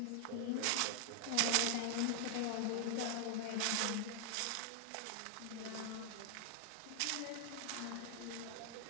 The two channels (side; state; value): both; different; correlation -0.01